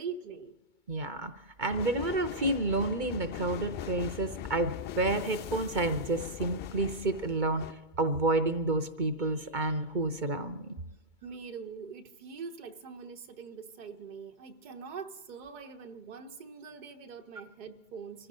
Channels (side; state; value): left; late; 2.2 ms